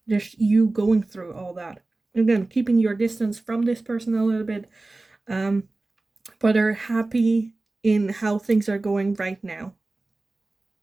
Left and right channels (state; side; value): quieter; left; 3.1 dB